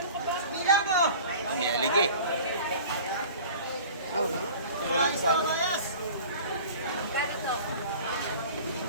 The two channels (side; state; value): both; inverted; correlation -0.42